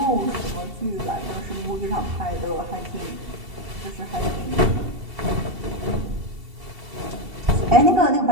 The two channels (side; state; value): left; late; 2.7 ms